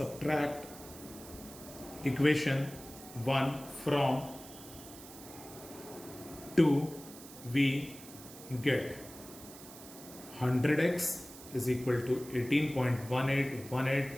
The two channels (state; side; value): noise; right; hiss, 16 dB below the sound